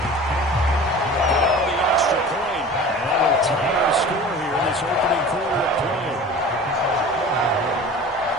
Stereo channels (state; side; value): normal; both; correlation 0.39